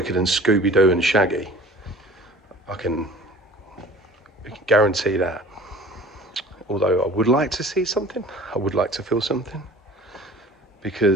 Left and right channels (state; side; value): normal; both; correlation 0.45